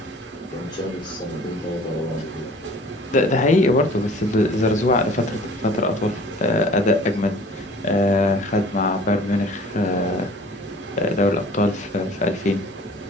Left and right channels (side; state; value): both; normal; correlation 0.48